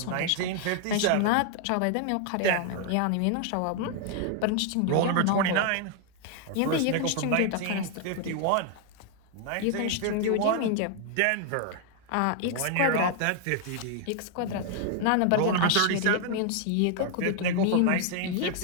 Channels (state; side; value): different; both; correlation 0.00